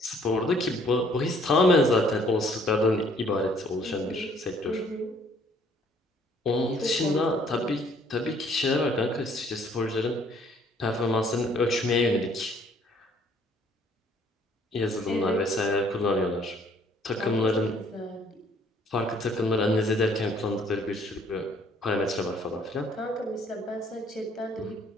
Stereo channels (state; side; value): normal; both; correlation 0.61